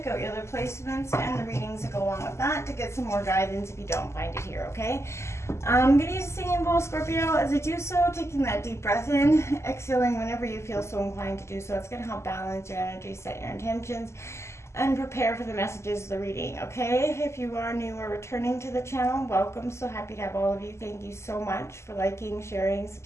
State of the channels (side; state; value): right; late; 0.13 ms